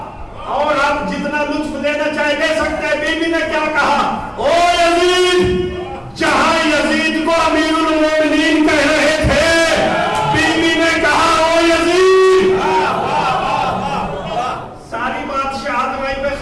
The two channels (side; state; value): both; identical; correlation 1.00